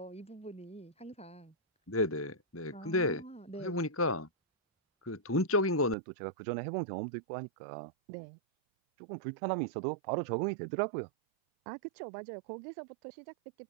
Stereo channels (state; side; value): drops out; left; at 6.0 s